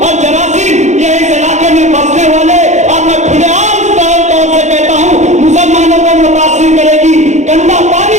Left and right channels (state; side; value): late; left; 0.34 ms